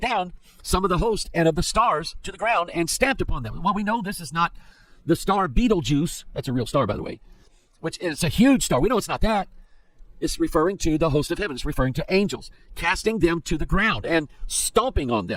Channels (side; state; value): both; identical; correlation 1.00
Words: down some of the host and of the stars to the ground and stamped upon them. Well, we know this is not the star Betelgeuse. That's a real star, by the way, which is a huge star. We know it's not that. It's referring to the host of heaven. It's referring to angels, casting them to the ground and stomping on